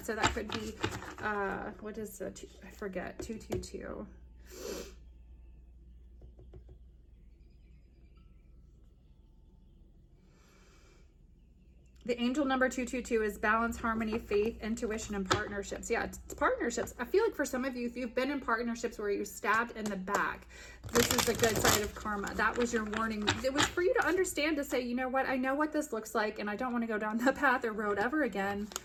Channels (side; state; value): both; identical; correlation 1.00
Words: So that could be, what is the, I forget, 222. The angel number 222 is balance, harmony, faith, intuition, and partnerships. Yeah, it's partnerships. I feel like for some of you, if you've been in partnerships where you're stabbed in the back, this is the good side of karma. That was your warning. It was for you to understand, to say, you know what, I know what this looks like, and I don't want to go down that path or road ever again.